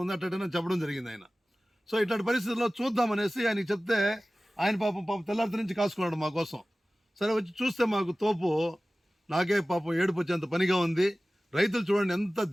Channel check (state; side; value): normal; both; correlation 0.97